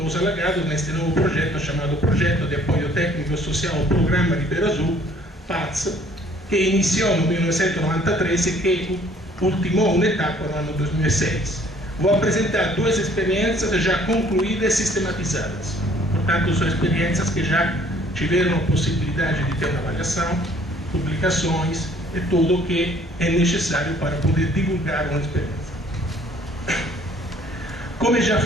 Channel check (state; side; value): normal; both; correlation 0.58